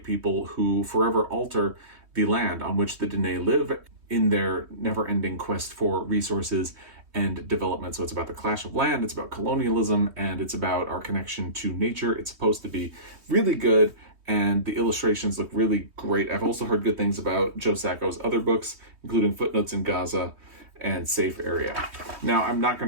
people who forever alter the land on which the Diné live in their never-ending quest for resources and development. So it's about the clash of land, it's about colonialism, and it's about our connection to nature. It's supposed to be really good, and the illustrations look really great. I've also heard good things about Joe Sacco's other books, including Footnotes in Gaza and Safe Area. Now, I'm not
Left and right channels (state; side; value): late; left; 3.1 ms